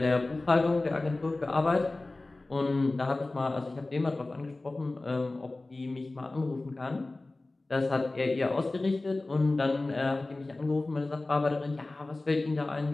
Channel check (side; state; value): right; quieter; 3.0 dB